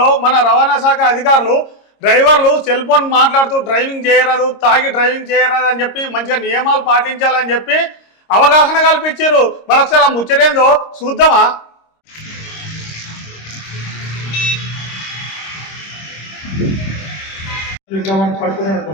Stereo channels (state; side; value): late; right; 26 ms